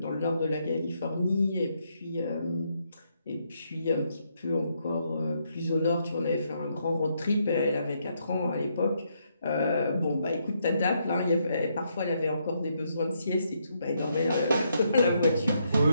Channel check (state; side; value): inverted; both; correlation -0.76